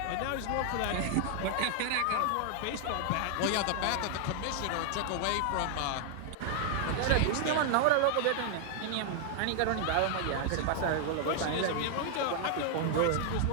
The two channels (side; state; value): both; different; correlation 0.00